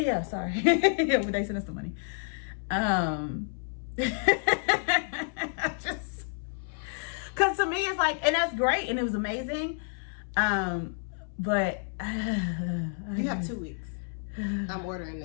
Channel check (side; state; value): right; silent; 58 dB below the other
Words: sorry. Yeah, but they sent us the money. Just because to me it's like, and that's great and it was amazing, but you have 2 weeks. I'm ordering